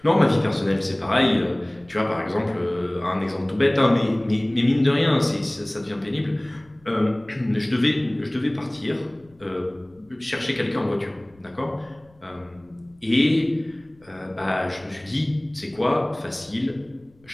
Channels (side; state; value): left; noise; rumble, 30 dB below the sound